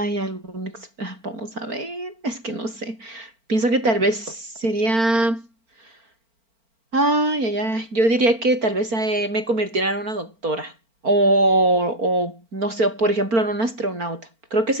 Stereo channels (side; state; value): left; late; 4.4 ms